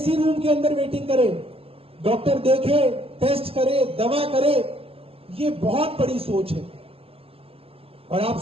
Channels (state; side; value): late; left; 0.27 ms